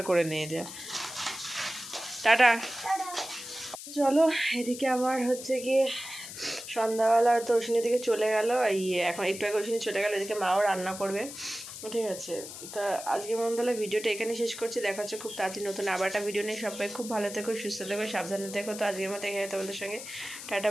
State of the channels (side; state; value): left; noise; hiss, 11 dB below the sound